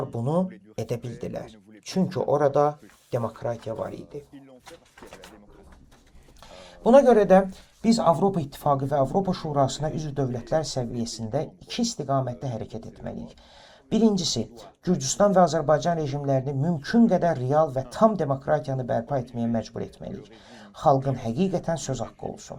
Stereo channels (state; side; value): identical; both; correlation 1.00